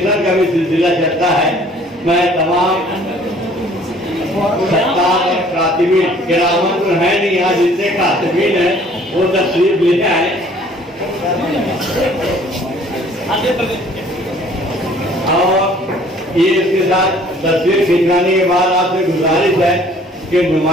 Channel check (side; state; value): both; normal; correlation 0.56